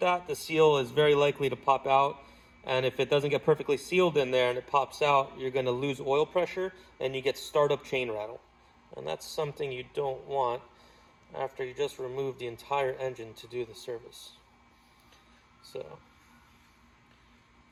that, the seal is very likely to pop out. And if it doesn't get perfectly sealed in there and it pops out, you're going to lose oil pressure and you get startup chain rattle. And that's something you don't want after you just remove the entire engine to do the service. So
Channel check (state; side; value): identical; both; correlation 1.00